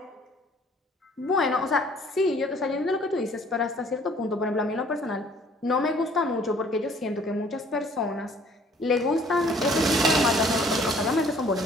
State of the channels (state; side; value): normal; both; correlation 0.57